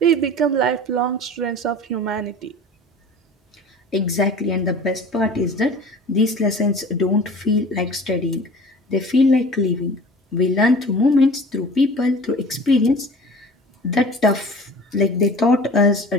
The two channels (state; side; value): normal; both; correlation 0.42